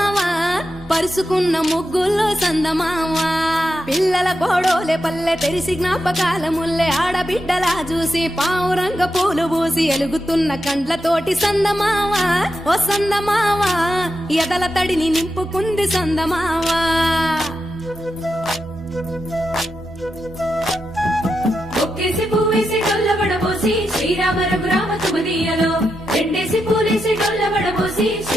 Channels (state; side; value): normal; both; correlation 0.87